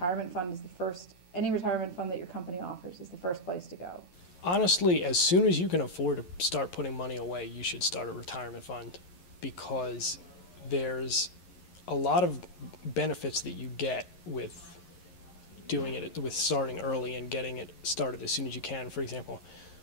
Honestly, as soon as you can afford to start putting money away, you should start a retirement fund, because there's a lot of benefits that you get with doing it, with starting early and getting it started as soon as you can. For example,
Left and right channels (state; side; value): late; right; 11 ms